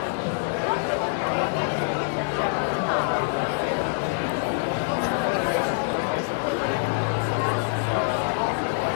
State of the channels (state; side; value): silent; right; digital silence